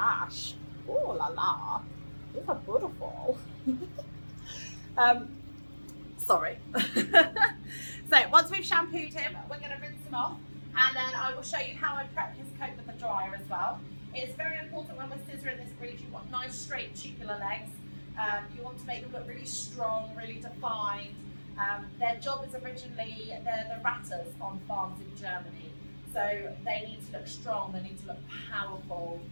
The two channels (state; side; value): inverted; both; correlation -1.00